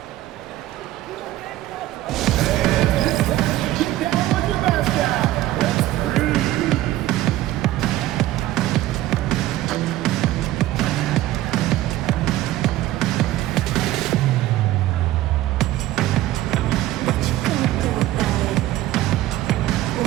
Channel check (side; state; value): left; quieter; 15.2 dB